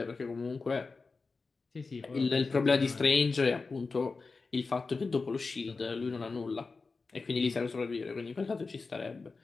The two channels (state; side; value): quieter; right; 4.2 dB